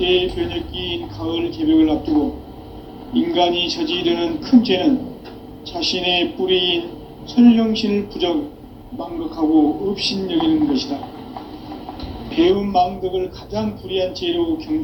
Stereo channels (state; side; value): identical; both; correlation 1.00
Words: 가을 개벽을 앞두고 인간이 저지르는 큰 죄는 자신의 뿌리인 선령신을 부정, 망극하고 업신여기는 것이다. 배움 망덕을 가장 불의한 죄로